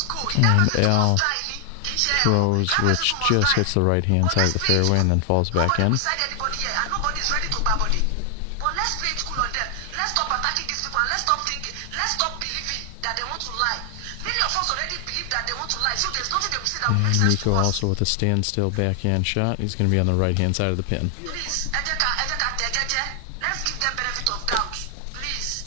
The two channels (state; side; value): different; both; correlation 0.00